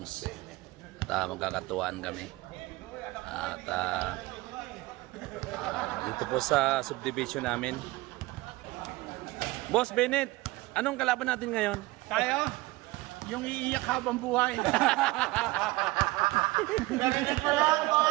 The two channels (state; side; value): quieter; left; 20.4 dB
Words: at magkakatuwaan kami at dito po sa subdivision namin. Boss Bennett, anong kalaban natin ngayon? Tayo, yung iiyak habang buhay.